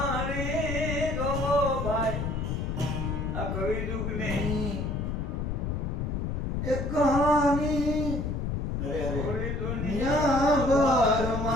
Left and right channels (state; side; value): noise; left; rumble, 2 dB below the sound